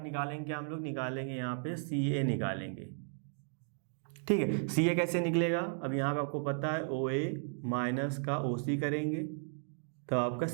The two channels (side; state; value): left; silent; 54 dB below the other